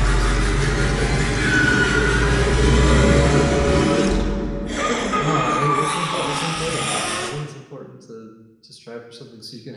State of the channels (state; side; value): identical; both; correlation 1.00